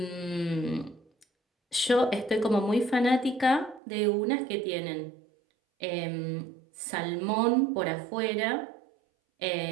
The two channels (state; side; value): drops out; left; at 3.8 s